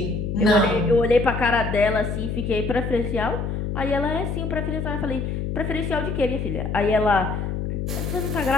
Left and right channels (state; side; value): noise; left; hum, 3 dB below the sound